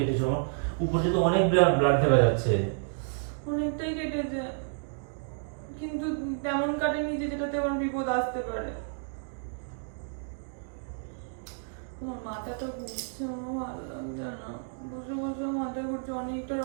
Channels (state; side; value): silent; left; digital silence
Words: আমার উপর থেকে অনেক ব্লাড দেখা যাচ্ছে। অনেকটাই কেটেছে, কিন্তু তেমন কাটেনি যে যেটাতে আমার বিপদ আসতে পারে। আমার মাথাটা ঘুরছে, আমার ভালো লাগছে না। বসে বসে মাথা ঘুরছে, অনেকটা